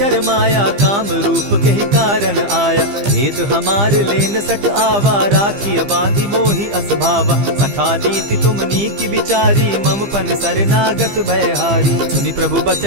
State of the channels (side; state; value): left; late; 15 ms